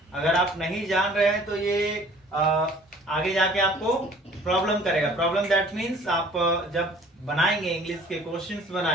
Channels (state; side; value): normal; both; correlation 0.52